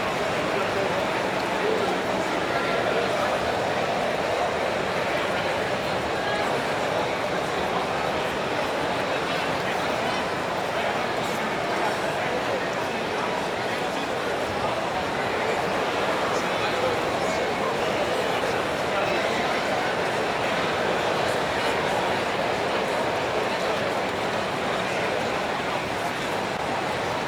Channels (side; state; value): both; identical; correlation 1.00